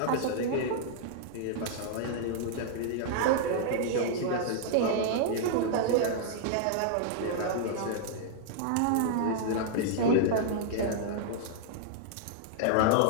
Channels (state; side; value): different; both; correlation -0.01